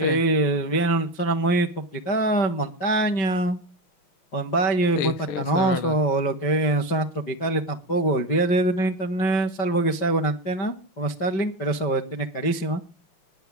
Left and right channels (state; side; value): late; right; 5.3 ms